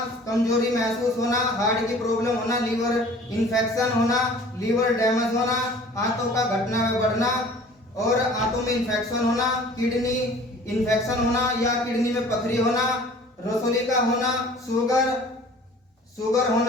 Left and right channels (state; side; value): normal; both; correlation 0.48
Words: कमजोरी महसूस होना, हार्ट की प्रॉब्लम होना, लीवर इन्फेक्शन होना, लीवर डैमेज होना, आंतों का घटना में बढ़ना और आंतों में इन्फेक्शन होना, किडनी इन्फेक्शन होना या किडनी में पथरी होना, रसोली का होना, शुगर